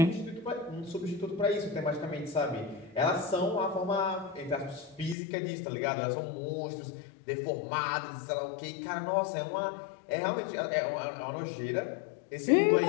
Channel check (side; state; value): right; drops out; at 5.2 s